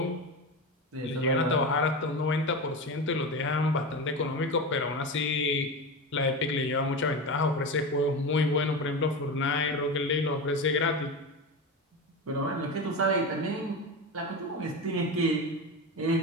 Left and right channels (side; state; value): both; normal; correlation 0.22